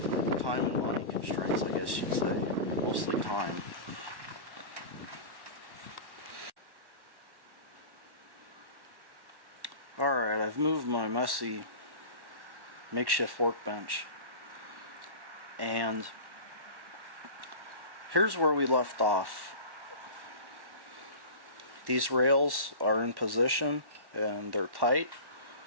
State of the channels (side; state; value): left; late; 1.1 ms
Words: money constraints, I guess you'd say. Mostly time. Alright, I've moved my messy makeshift workbench, and here's where we left off. These rails are in position and they're tight.